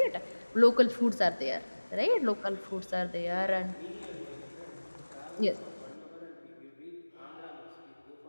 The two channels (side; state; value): both; inverted; correlation -1.00